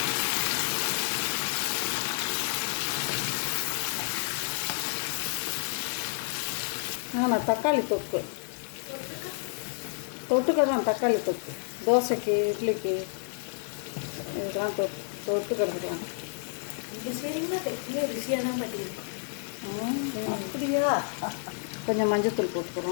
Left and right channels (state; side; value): silent; right; digital silence